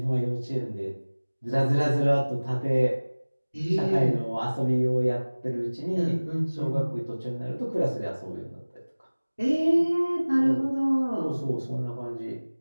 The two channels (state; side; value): inverted; both; correlation -1.00